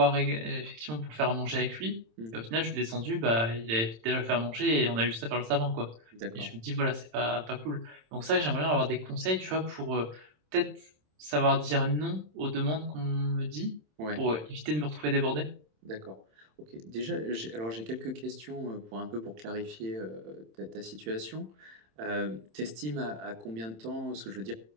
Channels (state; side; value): late; left; 27 ms